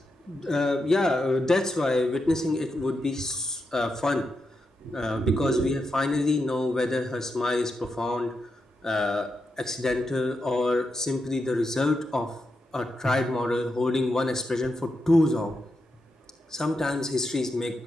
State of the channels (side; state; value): both; normal; correlation 0.86